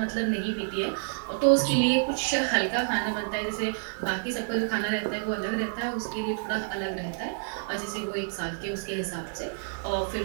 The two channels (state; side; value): silent; left; 59 dB below the other